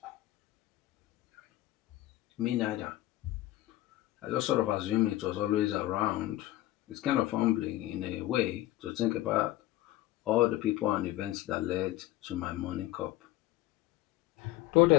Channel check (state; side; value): quieter; right; 16.0 dB